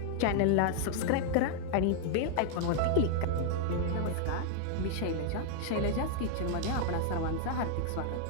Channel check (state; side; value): different; both; correlation 0.00